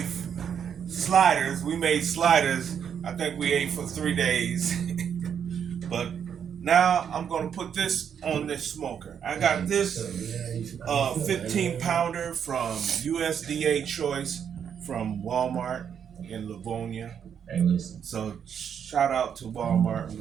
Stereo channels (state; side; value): quieter; left; 8.0 dB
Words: sliders. We made sliders. I think we ate for 3 days. But now I'm gonna put this on this smoker. I got this 15 pounder from USDA Choice from Walmart in Livonia. So shout out to Walmart